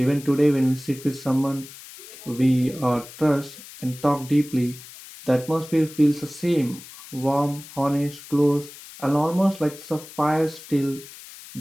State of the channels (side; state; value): left; noise; hiss, 17 dB below the sound